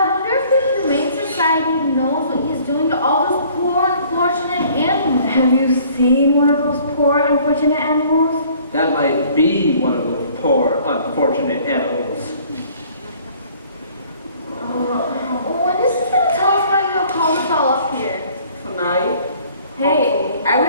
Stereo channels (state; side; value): inverted; both; correlation -0.56